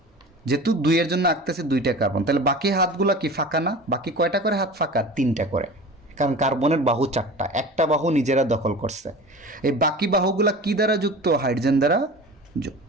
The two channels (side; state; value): both; normal; correlation 0.36